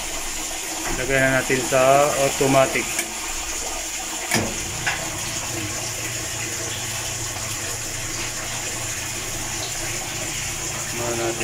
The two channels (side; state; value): both; identical; correlation 1.00